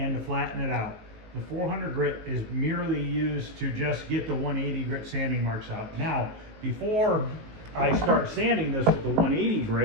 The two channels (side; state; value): left; late; 19 ms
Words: to flatten it out. The 400 grit is merely used to just get the 180 grit sanding marks out. Now, before I start sanding this with the 180